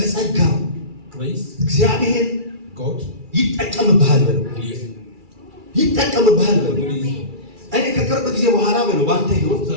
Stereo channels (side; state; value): left; late; 2.3 ms